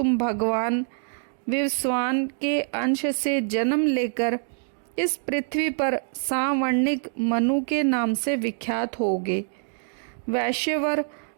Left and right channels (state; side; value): silent; left; digital silence